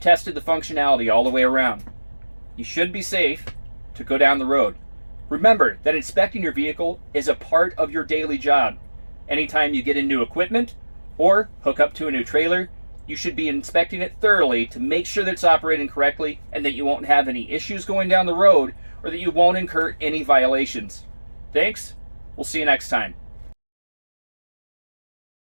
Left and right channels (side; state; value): both; inverted; correlation -1.00